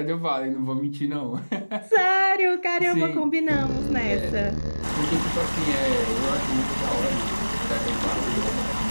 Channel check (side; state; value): both; inverted; correlation -1.00